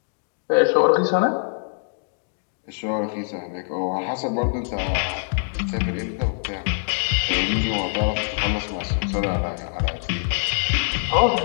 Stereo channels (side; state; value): right; silent; 63 dB below the other